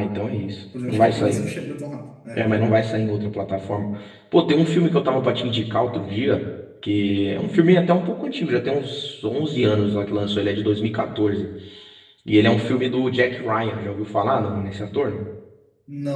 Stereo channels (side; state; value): both; identical; correlation 1.00